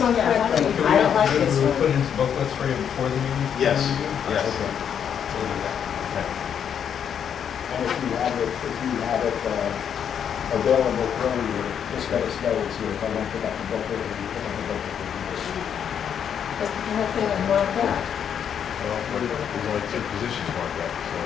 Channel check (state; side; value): quieter; right; 8.3 dB